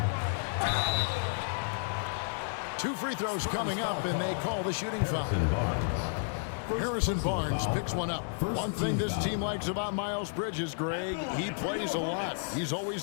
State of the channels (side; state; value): right; silent; digital silence